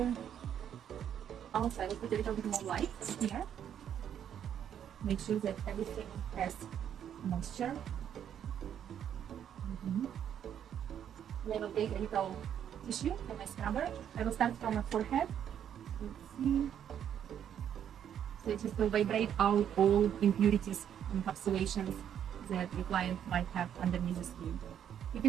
Also, I will put a little bit more light here. Make sure that everything has moisture. And I will take a little tissue for my scrubber. I will start from my forehead. Let's see. So it just will vibrate out all impurities and encapsulations that the client might have underneath the skin. You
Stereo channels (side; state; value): left; quieter; 9.4 dB